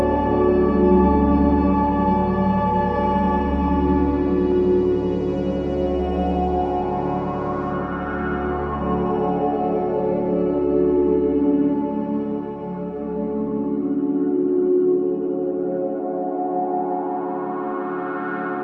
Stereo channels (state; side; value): identical; both; correlation 1.00